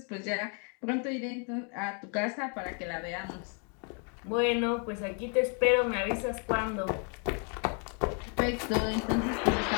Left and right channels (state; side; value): quieter; right; 39.6 dB